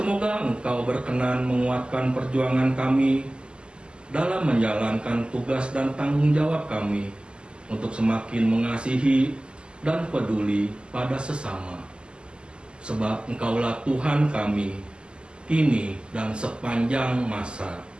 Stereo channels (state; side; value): late; left; 0.049 ms